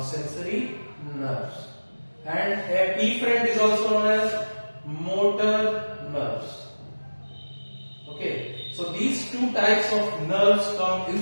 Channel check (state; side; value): inverted; both; correlation -1.00